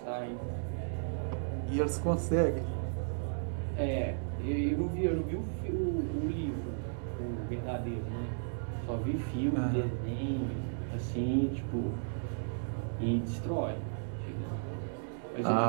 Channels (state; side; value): silent; left; digital silence